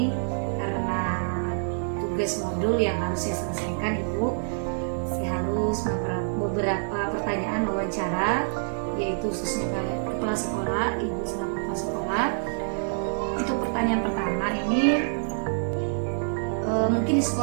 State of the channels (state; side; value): silent; left; digital silence